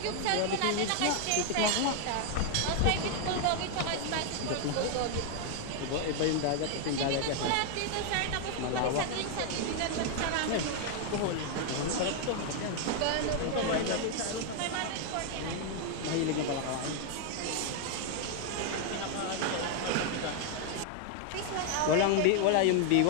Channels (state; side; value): different; both; correlation 0.00